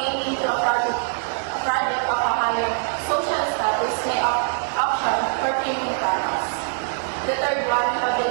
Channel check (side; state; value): left; silent; digital silence